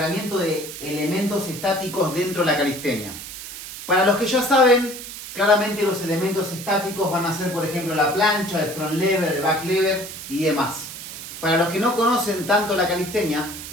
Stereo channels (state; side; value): noise; right; hiss, 11 dB below the sound